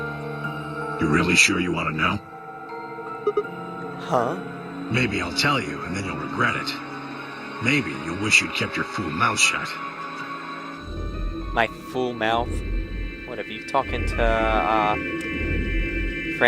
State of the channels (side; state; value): both; identical; correlation 1.00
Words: You really sure you want to know? Huh? Maybe I'll tell you, and then you'll regret it. Maybe you'll wish you'd kept your fool mouth shut. My fool mouth? What, have you talking to,